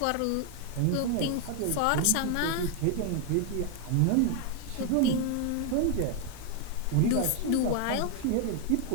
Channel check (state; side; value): different; both; correlation 0.01